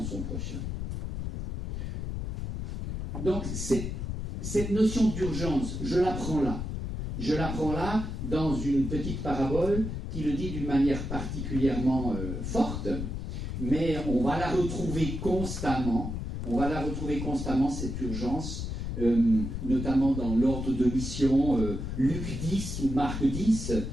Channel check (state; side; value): noise; left; rumble, 4 dB below the sound